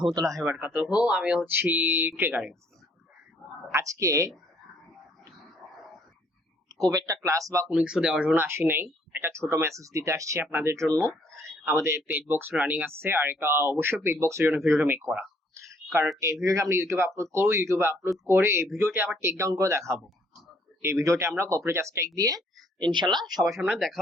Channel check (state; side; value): normal; both; correlation 0.64